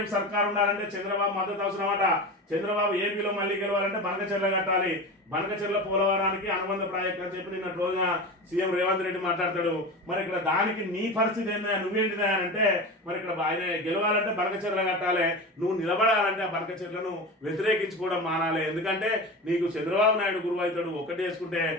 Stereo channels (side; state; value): both; normal; correlation 0.28